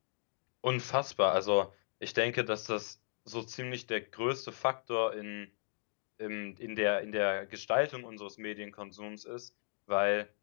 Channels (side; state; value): right; silent; digital silence